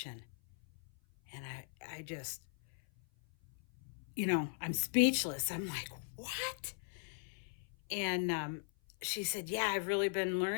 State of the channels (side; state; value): right; silent; 52 dB below the other